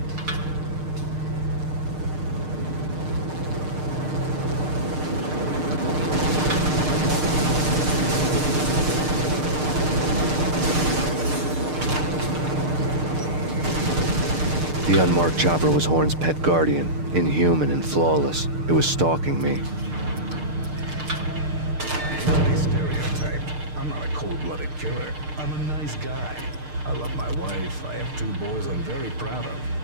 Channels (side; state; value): left; late; 6.6 ms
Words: The unmarked chopper was Horn's pet guardian, inhuman and flawless. It was stalking me. I hate to be stereotyped. I'm not a cold-blooded killer. I'm a nice guy. I love my wife. I have 2 boys I'm very proud of.